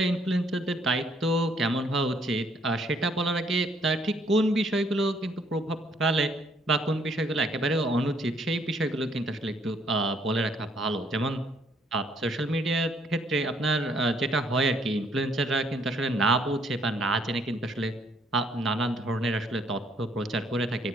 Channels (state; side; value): normal; both; correlation 0.67